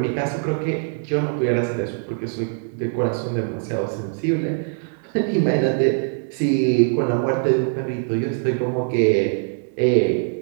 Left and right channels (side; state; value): left; silent; 64 dB below the other